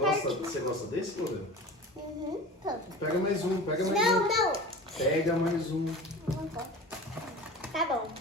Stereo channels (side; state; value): both; normal; correlation 0.36